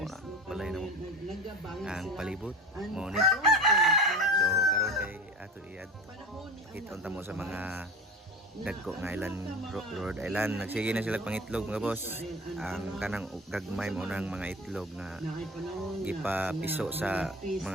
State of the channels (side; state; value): both; normal; correlation 0.33